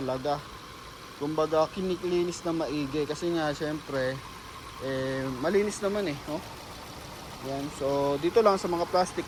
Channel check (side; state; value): both; identical; correlation 1.00